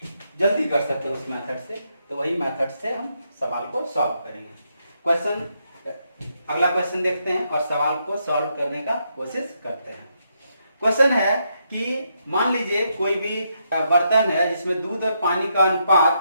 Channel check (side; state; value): both; inverted; correlation -0.79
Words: जल्दी कर सकते हैं उस मेथड से। तो वही मेथड से हम सवाल को सॉल्व करेंगे। अगला क्वेश्चन देखते हैं और सवाल को सॉल्व करने का कोशिश करते हैं। क्वेश्चन है कि मान लीजिए कोई भी बर्तन है जिसमें दूध और पानी का